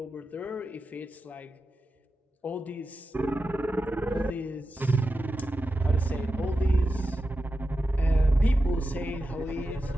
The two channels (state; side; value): normal; both; correlation 0.91